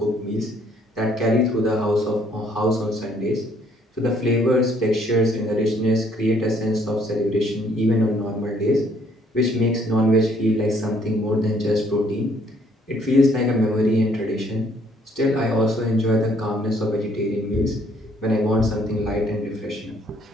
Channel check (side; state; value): both; normal; correlation 0.64